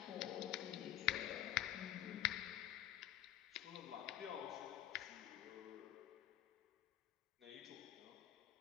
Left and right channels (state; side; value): quieter; right; 12.8 dB